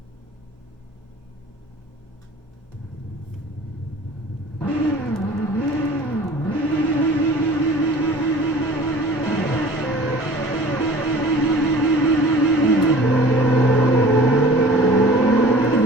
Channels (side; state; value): both; normal; correlation 0.45